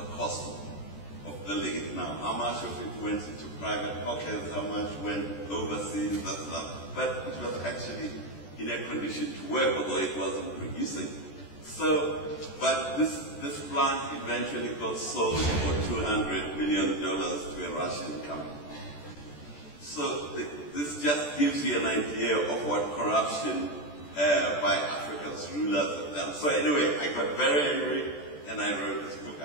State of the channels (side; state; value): right; late; 14 ms